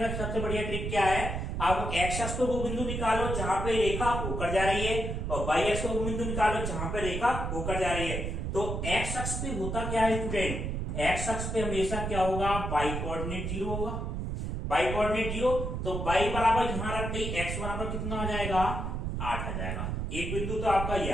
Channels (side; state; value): right; noise; rumble, 3 dB below the sound